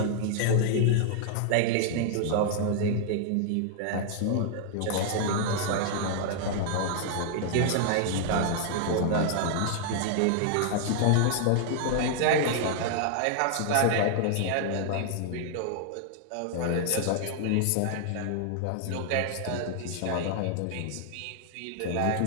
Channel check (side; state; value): both; different; correlation -0.01